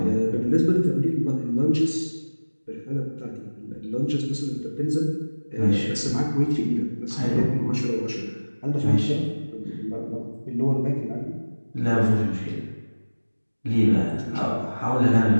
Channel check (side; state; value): both; inverted; correlation -1.00